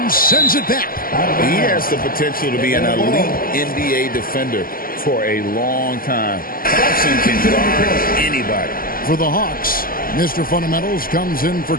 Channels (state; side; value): late; right; 0.42 ms